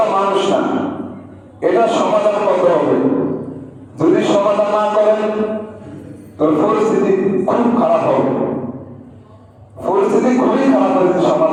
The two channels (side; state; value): both; identical; correlation 1.00